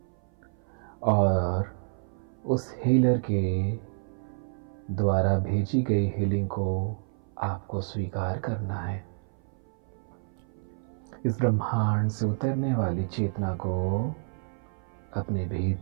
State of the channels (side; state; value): left; silent; 57 dB below the other